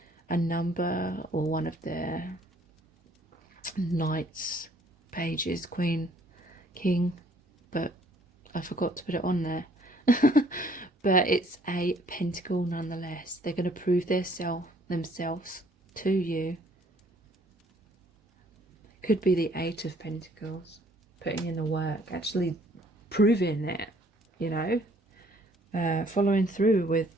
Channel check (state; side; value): normal; both; correlation 0.61